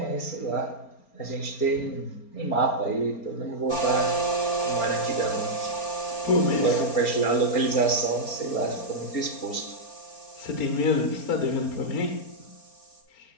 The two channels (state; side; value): late; right; 4.3 ms